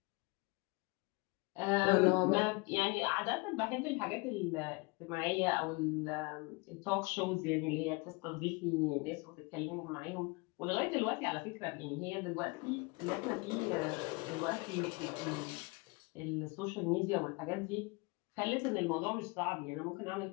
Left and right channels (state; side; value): quieter; right; 27.9 dB